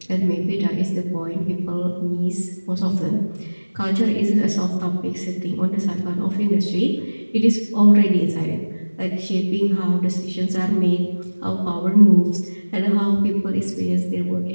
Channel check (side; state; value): both; inverted; correlation -1.00